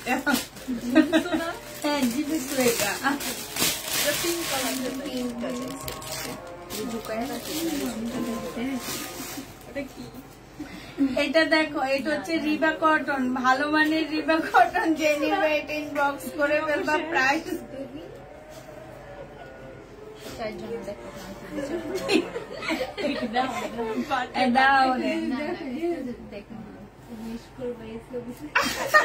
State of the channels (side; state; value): both; identical; correlation 1.00